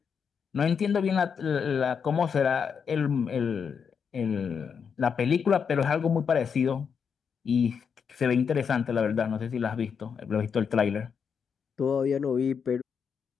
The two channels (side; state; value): right; quieter; 6.6 dB